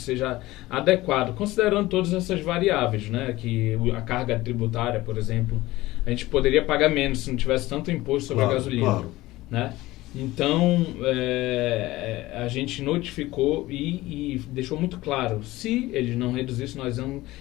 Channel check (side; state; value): right; quieter; 18.1 dB